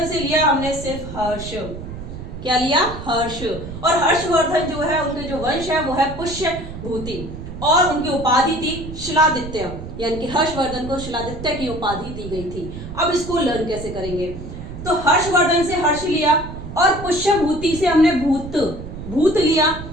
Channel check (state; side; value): noise; right; rumble, 10 dB below the sound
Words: से लिया हमने सिर्फ हर्ष। क्या लिया? हर्ष। और हर्षवर्धन जो है उनके जो वंश है वो है पुष्यभूति, और उनकी उपाधि थी शिलादित्य, यानी कि हर्षवर्धन को शिलादित्य की उपाधि दी गई थी। अब इसको लर्न कैसे करेंगे? तो हर्षवर्धन से हर्ष लिया, और पुष्यभूति से हमने भूत लिया,